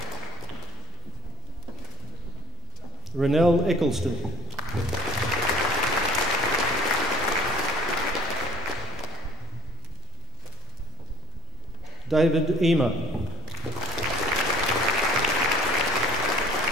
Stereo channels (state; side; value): normal; both; correlation 0.48